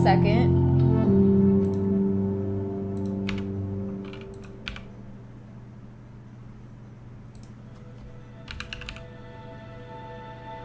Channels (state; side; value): identical; both; correlation 1.00